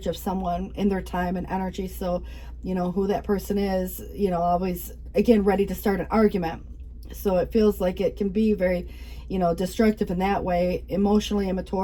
of someone in their time and energy. So, who that person is, always, again, ready to start an argument. So it feels like it can be very, destructive in that way, emotionally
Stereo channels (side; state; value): both; identical; correlation 1.00